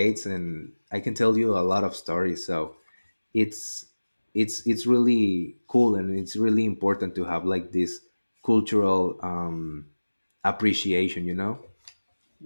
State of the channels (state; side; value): inverted; both; correlation -1.00